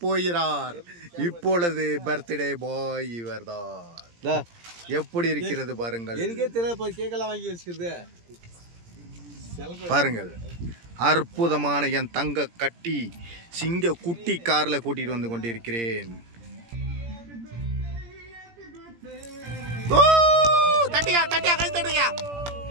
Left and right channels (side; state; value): left; late; 17 ms